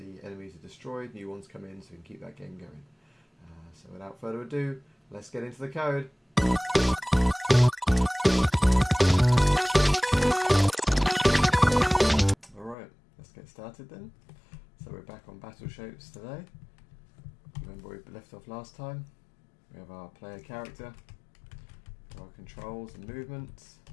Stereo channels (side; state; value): right; drops out; at 12.8 s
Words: enemies are destroyed, new ones come in, so we can keep that game going. So without further ado, let's get into the code. Alright, let's get started then. So we're back on Battle Shapes today. Remember where we left off last time. We have our player character, our controls and movements.